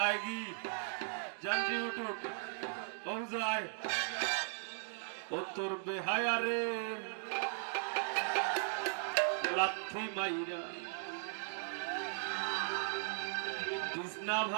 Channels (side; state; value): left; silent; digital silence